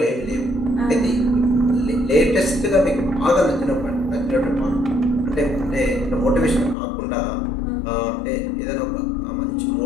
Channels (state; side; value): drops out; right; at 6.8 s